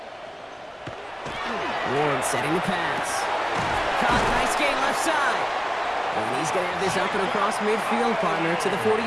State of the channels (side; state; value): both; identical; correlation 1.00